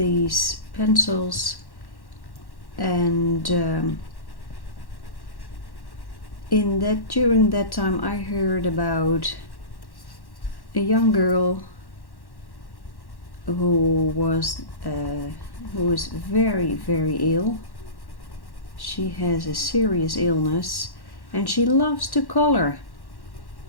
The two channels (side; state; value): right; late; 1.1 ms